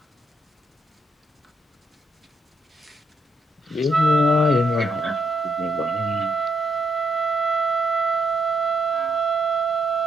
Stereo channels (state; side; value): normal; both; correlation 0.77